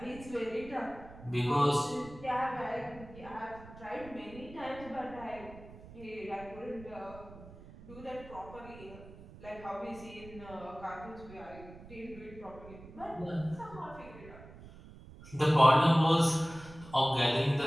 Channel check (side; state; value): right; noise; rumble, 17 dB below the sound